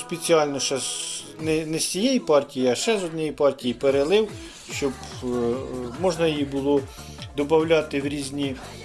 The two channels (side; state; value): both; identical; correlation 1.00